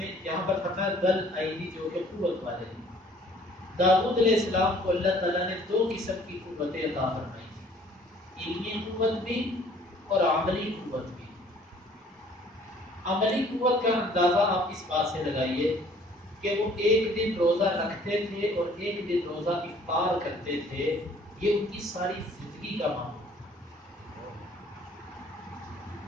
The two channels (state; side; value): normal; both; correlation 0.56